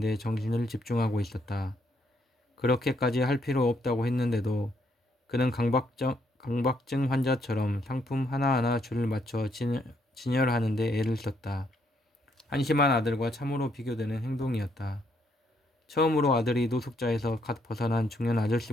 정신을 집중하고 있었다. 그렇게까지 할 필요 없다고 했는데도 그는 강박증 환자처럼 상품 하나하나 줄을 맞춰 진열하는 데 애를 썼다. 한심한 아들과 참으로 비교되는 행동이었다. 처음으로 아들이 노숙자에서 갓 벗어난 중년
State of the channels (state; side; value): normal; both; correlation 0.73